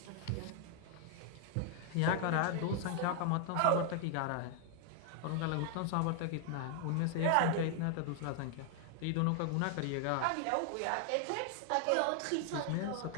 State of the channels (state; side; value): different; both; correlation 0.00